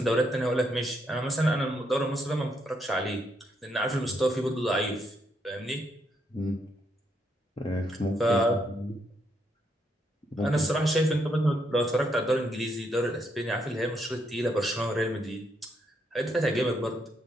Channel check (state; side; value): normal; both; correlation 0.76